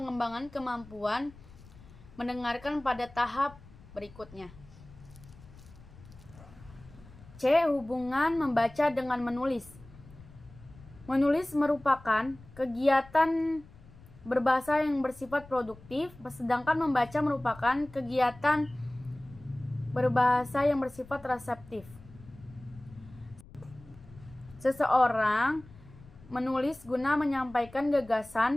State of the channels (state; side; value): noise; left; rumble, 21 dB below the sound